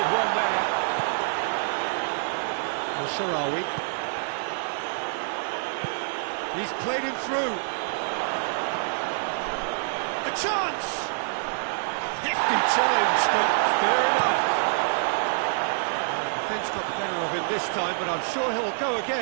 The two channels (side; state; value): left; silent; digital silence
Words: one there. Well, Sharawi. He's played him through. A chance! Hefty challenge, but fair enough. The defence got the better of him this time, but I'm sure he'll go